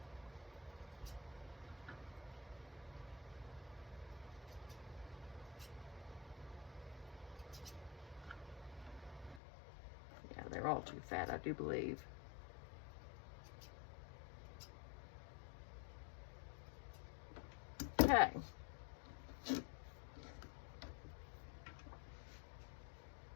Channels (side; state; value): right; drops out; at 9.4 s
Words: They're all too fat, I do believe. Okay.